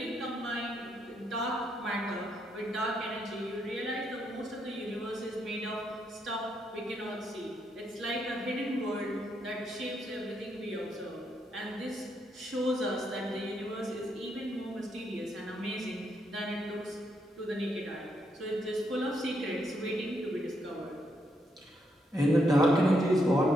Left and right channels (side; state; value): both; normal; correlation 0.78